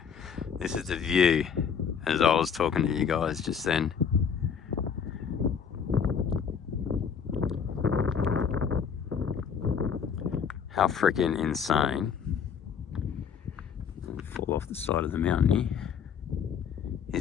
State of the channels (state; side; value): quieter; right; 7.1 dB